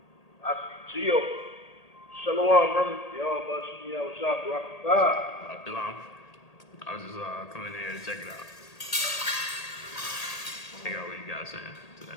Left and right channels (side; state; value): right; late; 1.8 ms